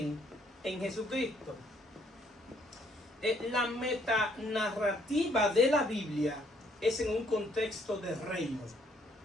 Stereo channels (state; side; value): normal; both; correlation 0.67